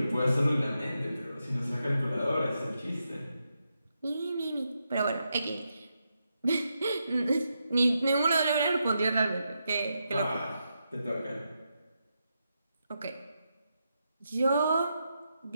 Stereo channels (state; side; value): inverted; both; correlation -0.85